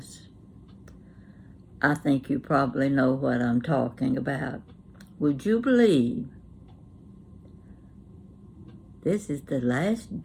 I think you probably know what I'm talking about. Would you believe this is the last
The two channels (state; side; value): identical; both; correlation 1.00